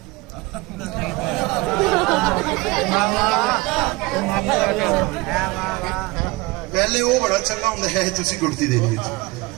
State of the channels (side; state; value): left; quieter; 23.0 dB